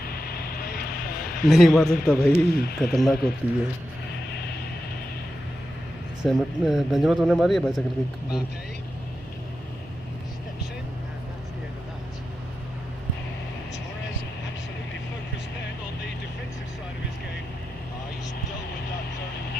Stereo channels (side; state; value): both; normal; correlation 0.90